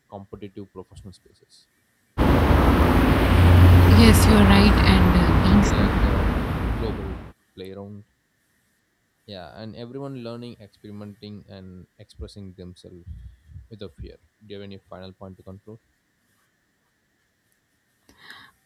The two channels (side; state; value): both; identical; correlation 1.00